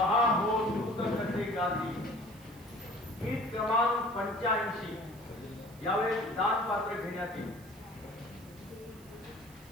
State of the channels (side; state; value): right; noise; hiss, 23 dB below the sound